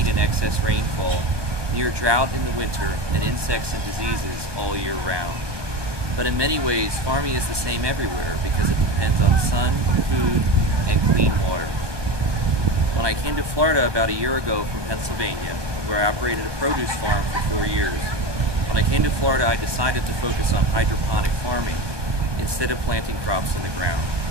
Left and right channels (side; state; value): left; late; 1.2 ms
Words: and excess rainfall, near drought in the winter, and insects and diseases all year round. But in many ways, farming is the same everywhere because it depends on sun, food, and clean water. When I came to Florida about a year ago from Pennsylvania, where I operated a produce farm for 4 years, when I came to Florida, I decided to focus on hydroponic farming instead of planting crops in the ground.